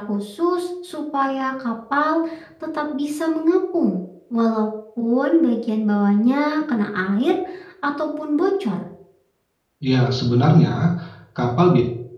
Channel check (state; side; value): identical; both; correlation 1.00